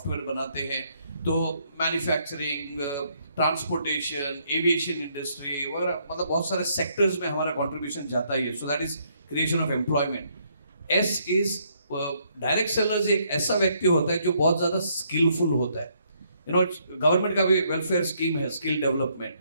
बनाते हैं, तो मैन्युफैक्चरिंग, ट्रांसपोर्टेशन, एविएशन इंडस्ट्री वगैरह, मतलब बहुत सारे सेक्टर्स में हमारा कंट्रीब्यूशन जाता ही है। सो that is creation of employment. S is direct sellers एक ऐसा व्यक्ति होता है जो बहुत ज्यादा स्किलफुल होता है। गवर्नमेंट का भी वेलफेयर स्कीम है स्किल डेवलपमेंट,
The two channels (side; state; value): both; inverted; correlation -0.71